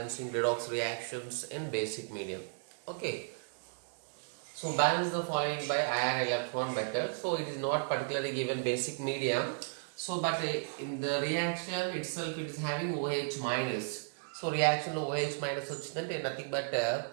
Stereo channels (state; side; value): silent; left; digital silence